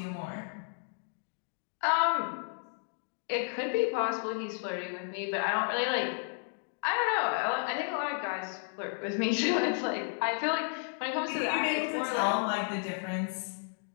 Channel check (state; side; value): silent; right; 56 dB below the other